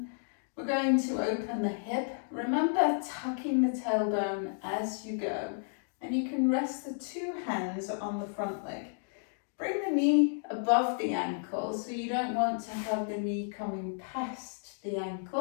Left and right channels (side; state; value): right; silent; digital silence